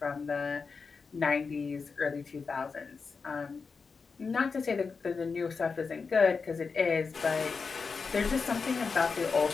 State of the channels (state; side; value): quieter; right; 5.0 dB